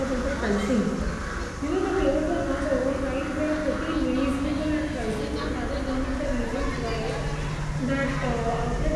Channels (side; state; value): both; identical; correlation 1.00